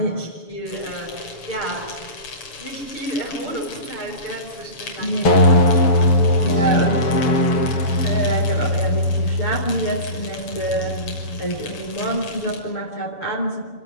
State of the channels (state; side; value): late; right; 7.1 ms